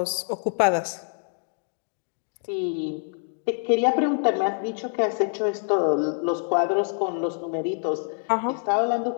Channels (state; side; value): silent; right; 61 dB below the other